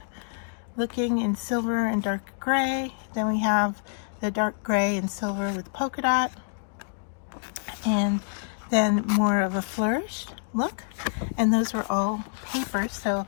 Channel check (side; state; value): right; silent; digital silence